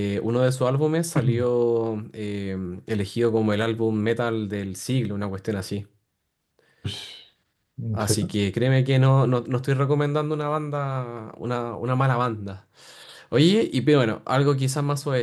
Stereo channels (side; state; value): both; identical; correlation 1.00